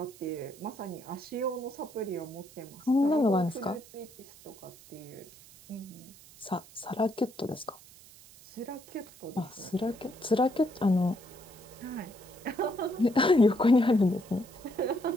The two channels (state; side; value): noise; right; hiss, 22 dB below the sound